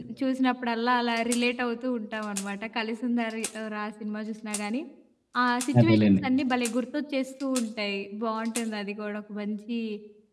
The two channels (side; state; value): both; identical; correlation 1.00